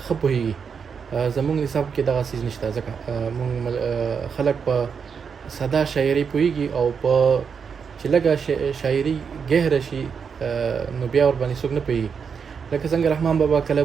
ښه پوهېږي. زموږ نصاب کې دغه څیز نشته، ځکه موږ خلک په ساده شاعري پوهېږي او په چې لږه شاعري ګهره شي نو بیا ورباندې څوک نه پوهېږي. لکه څنګه رحمان بابا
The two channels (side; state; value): left; quieter; 6.3 dB